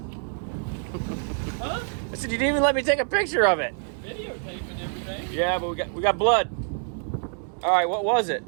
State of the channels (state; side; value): silent; left; 61 dB below the other